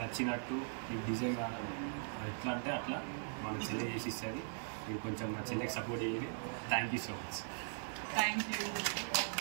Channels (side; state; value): left; silent; 51 dB below the other